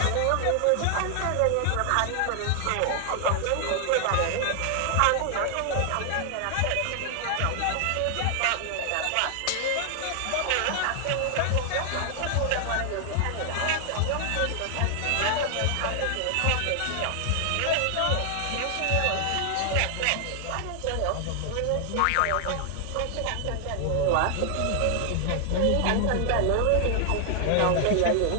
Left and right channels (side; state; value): both; different; correlation 0.00